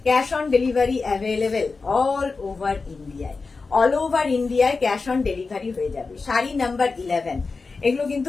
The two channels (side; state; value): right; quieter; 4.2 dB